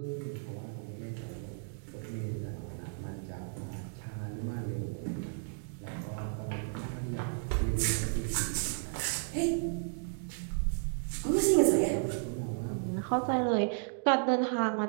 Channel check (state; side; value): silent; left; digital silence